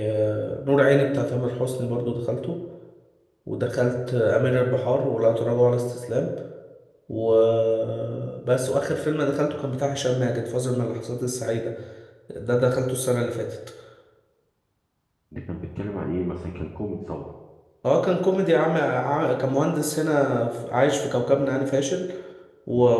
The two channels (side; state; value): both; identical; correlation 1.00